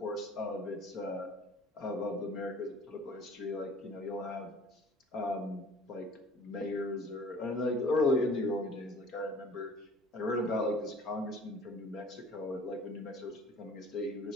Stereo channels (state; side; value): normal; both; correlation 0.49